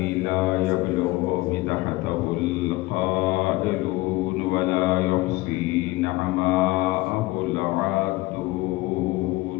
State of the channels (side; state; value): right; quieter; 20.2 dB